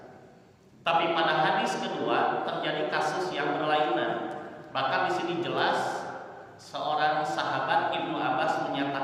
Tapi pada hadis kedua terjadi kasus yang berlainan. Bahkan di sini jelas seorang sahabat Ibnu Abbas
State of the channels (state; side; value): identical; both; correlation 1.00